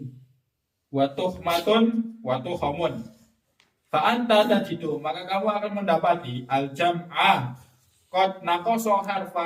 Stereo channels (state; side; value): identical; both; correlation 1.00